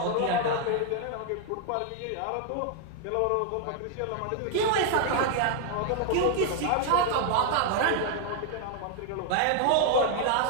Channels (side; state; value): both; different; correlation 0.00